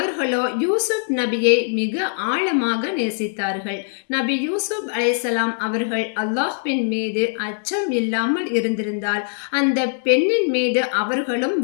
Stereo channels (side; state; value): right; silent; digital silence